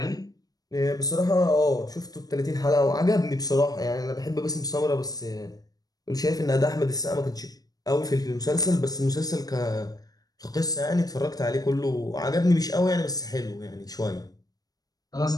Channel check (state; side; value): late; right; 0.18 ms